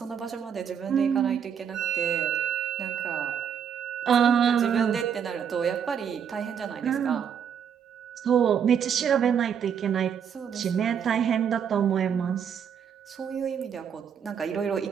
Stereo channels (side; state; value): left; quieter; 7.9 dB